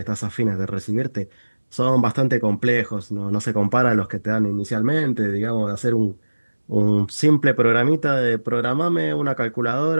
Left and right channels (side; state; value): both; inverted; correlation -1.00